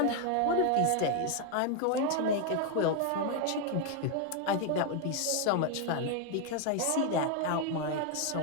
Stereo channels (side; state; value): both; different; correlation 0.01